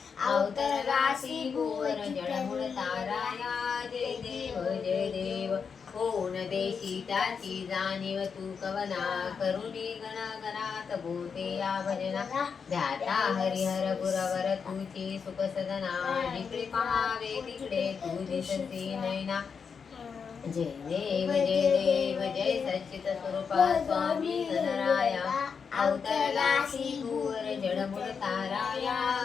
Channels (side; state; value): right; quieter; 6.1 dB